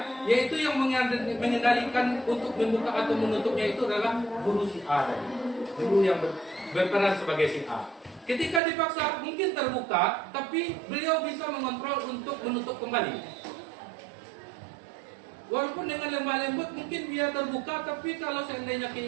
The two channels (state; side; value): drops out; left; at 8.6 s